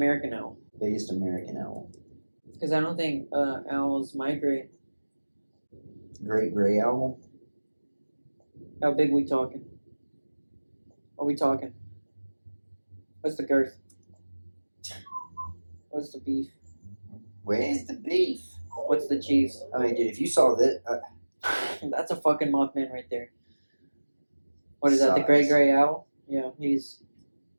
owl. Biggest American owl. Because I don't think owls migrate. Great gray owl. How big we talking? Are we talking? What's the girth? What's the beef? Where's the beef? What's the cheese? I mean, dude, if you saw this, That's a fucking Mothman right there. What is that? The Size. gray owl? Yeah, he's.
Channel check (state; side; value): inverted; both; correlation -1.00